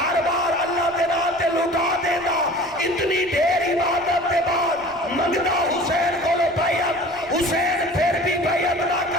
بار اللہ دے نام تے لٹا دینا اتنی دیر عبادت دے بعد منگدا حسین کو لو بیعت حسین پھر بھی بیعت نہ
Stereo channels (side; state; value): right; noise; rumble, 25 dB below the sound